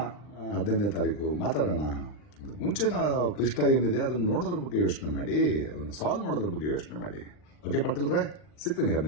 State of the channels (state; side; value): late; right; 40 ms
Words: 15ನೇ ತಾರೀಕು, ಮಾತಾಡೋಣ. ಮುಂಚಿನ ಕೃಷ್ಣ ಏನಿದೆ ಅದನ್ನು ನೋಡೋದ್ರ ಬಗ್ಗೆ ಯೋಚನೆ ಮಾಡಿ, ಅದನ್ನು ಸಾಲ್ವ್ ಮಾಡೋದ್ರ ಬಗ್ಗೆ ಯೋಚನೆ ಮಾಡಿ. ಓಕೆ ಪಾಟೀಲ್ರೆ, ಸಿಗ್ತೀನಿ